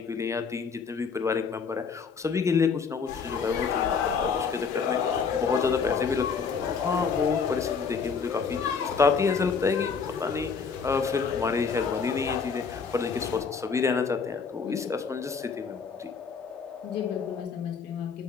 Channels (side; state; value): right; quieter; 5.7 dB